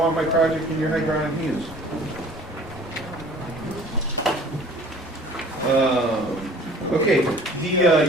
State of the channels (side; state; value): both; normal; correlation 0.49